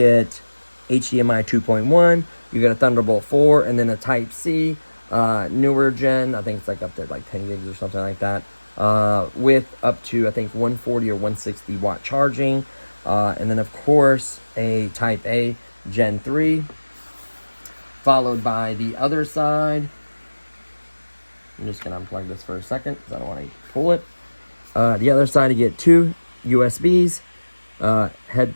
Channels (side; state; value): both; inverted; correlation -1.00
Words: HDMI 2.1, you get a Thunderbolt 4, and then a Type-C, newer gen, I think it's like up to like 10 gigs or something like that, with up to, I think, 140 or 160 watt charging, and then of course a Type-A Gen 3, followed by the other side. I'm just going to unplug this for a second because I don't want to pull it. The other side, you get 2 USBs,